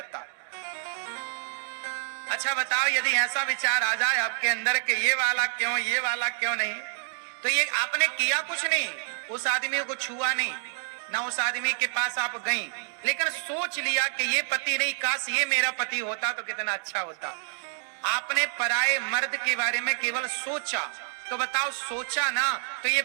अच्छा बताओ, यदि ऐसा विचार आ जाए आपके अंदर कि ये वाला क्यों, ये वाला क्यों नहीं, तो ये आपने किया कुछ नहीं, उस आदमी को छुआ नहीं, ना उस आदमी के पास आप गई, लेकिन सोच लिया कि ये पति नहीं, काश ये मेरा पति होता तो कितना अच्छा होता। आपने पराये मर्द के बारे में केवल सोचा, तो बताओ सोचा ना, तो ये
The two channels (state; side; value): silent; left; digital silence